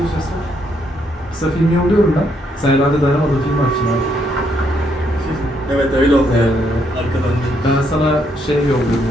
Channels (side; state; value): both; normal; correlation 0.74